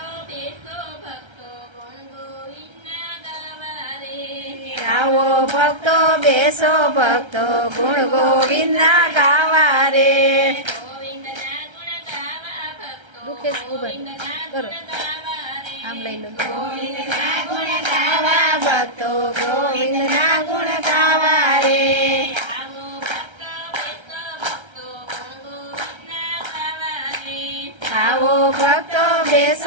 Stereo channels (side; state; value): left; late; 1.3 ms